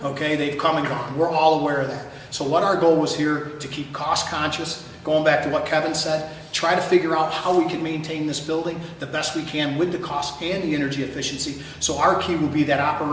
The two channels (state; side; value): identical; both; correlation 1.00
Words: Okay, they've come and gone. We're all aware of that. So what our goal was here, to keep cost conscious, going back to what Kevin said, try to figure out how we can maintain this building the best we can with the cost and the energy efficiency. So our key will be that